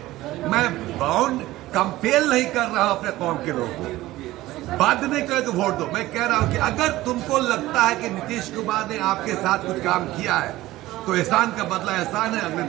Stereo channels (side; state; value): left; quieter; 16.9 dB